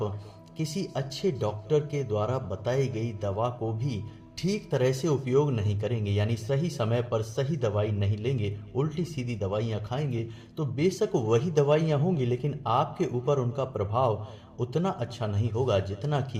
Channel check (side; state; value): both; identical; correlation 1.00